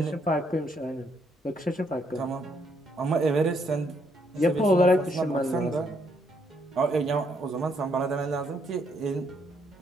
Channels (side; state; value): both; normal; correlation 0.72